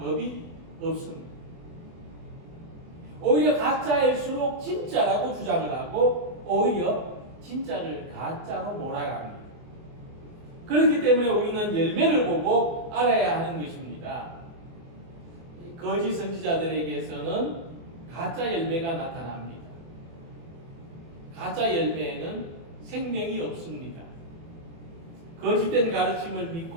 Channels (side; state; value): left; late; 24 ms